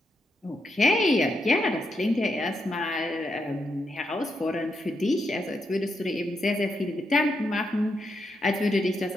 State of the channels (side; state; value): both; normal; correlation 0.82